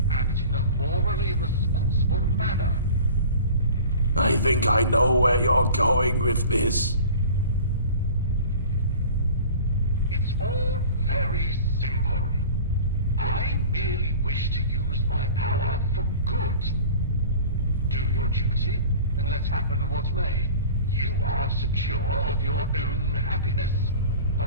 act in a morally responsible manner. I think I know where you're going with this. It's all very simple. I merely wish to use my power for good. Do your duty, and let happen what may. You are secure of your own happiness,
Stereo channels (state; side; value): inverted; both; correlation -0.41